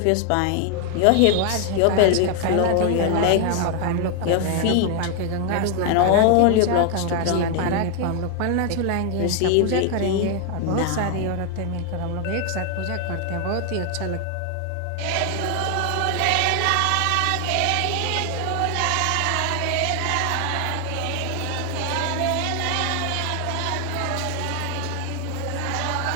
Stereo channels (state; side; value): different; both; correlation 0.00